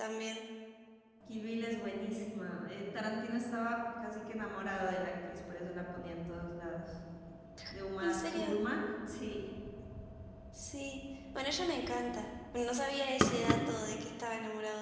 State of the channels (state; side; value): identical; both; correlation 1.00